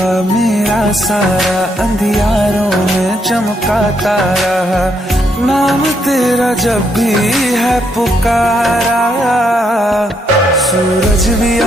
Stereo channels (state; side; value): normal; both; correlation 0.75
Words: मेरा सारा अंधियारों में चमका तारा नाम तेरा जब भी है पुकारा सूरज भी